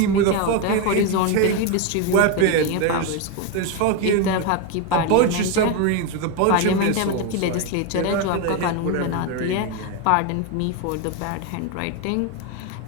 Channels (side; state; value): both; different; correlation 0.02